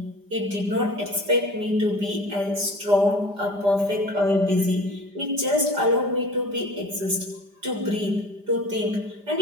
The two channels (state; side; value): late; left; 5.0 ms